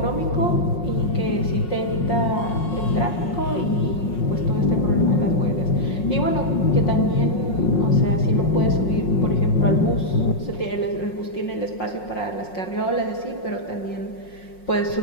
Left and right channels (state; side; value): late; right; 5.5 ms